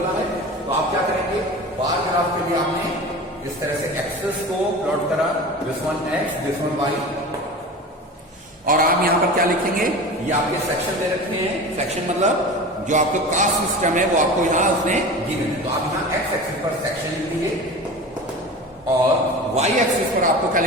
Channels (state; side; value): normal; both; correlation 0.33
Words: है। तो आप क्या करेंगे? बार ग्राफ के लिए आपने इस तरह से एक्सेस को प्लॉट करा, this one x, this one y, और आप यहां पर क्या लिखेंगे? ये आपके सेक्शन दे रखे हैं। सेक्शन मतलब जो आपका कास्ट सिस्टम है वो आपको यहां उसने गिवन है। तो आप यहां एक्स एक्सिस पर सेक्शन लिख लीजिए और वाई एक्सिस पर आपको क्या